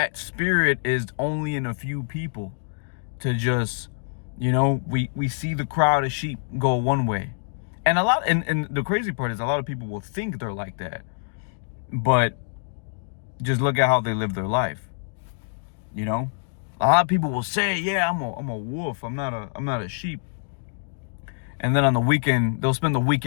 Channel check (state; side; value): silent; right; digital silence